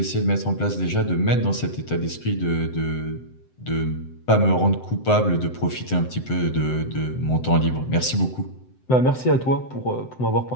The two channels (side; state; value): right; late; 7.8 ms